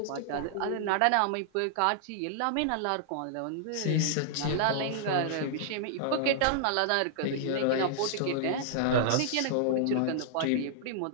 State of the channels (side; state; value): both; different; correlation -0.01